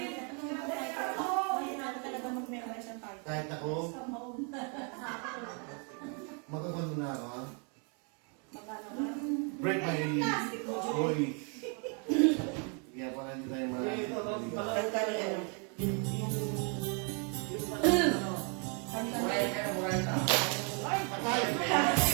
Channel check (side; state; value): left; quieter; 37.5 dB